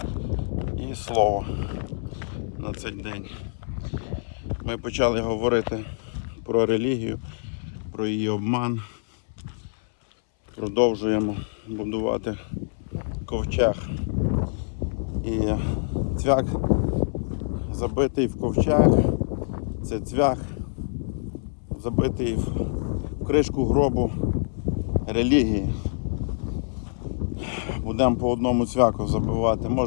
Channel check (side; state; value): right; silent; 60 dB below the other